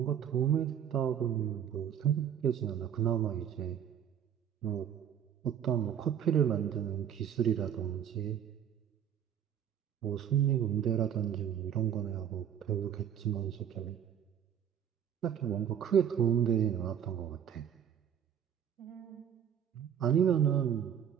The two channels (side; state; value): left; quieter; 9.2 dB